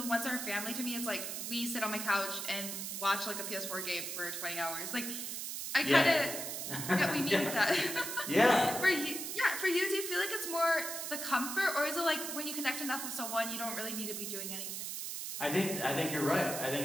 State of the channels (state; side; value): noise; right; hiss, 5 dB below the sound